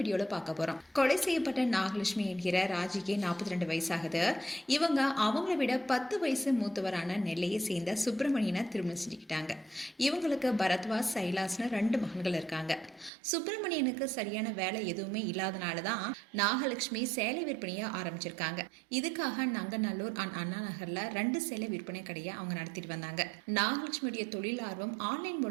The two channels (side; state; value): left; drops out; at 13.1 s